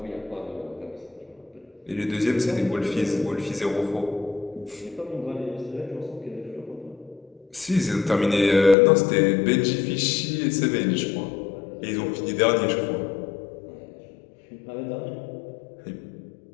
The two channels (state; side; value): drops out; right; at 8.8 s